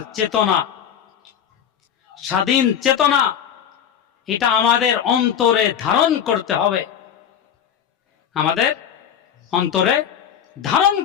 চেতনা, স্বাধীন চেতনা, এটা আমাদের অন্তরে ধারণ করতে হবে, আমাদের অন্তরে ধারণ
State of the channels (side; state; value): right; quieter; 8.9 dB